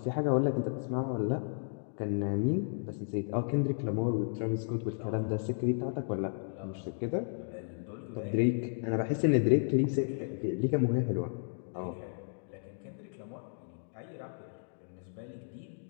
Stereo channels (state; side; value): silent; right; digital silence